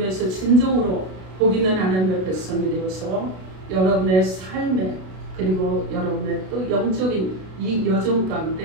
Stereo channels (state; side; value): late; left; 32 ms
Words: 진정으로 복 있는 하나님의 백성이 되어서 여러분의 삶에 그리고 여러분의 또 영적인 이 여정